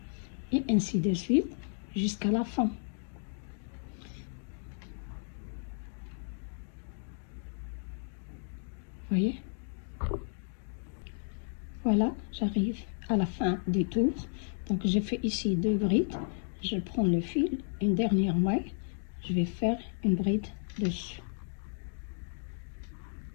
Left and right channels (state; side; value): silent; right; digital silence